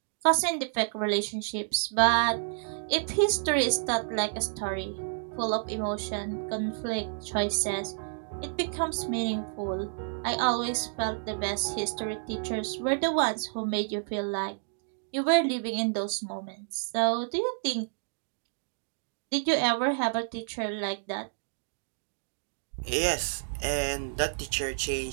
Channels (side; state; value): left; silent; digital silence